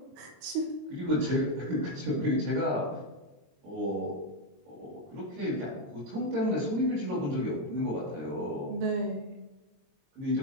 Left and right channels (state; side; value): late; left; 22 ms